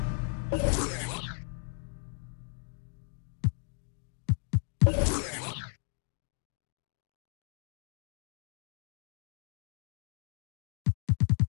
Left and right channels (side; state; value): right; silent; 55 dB below the other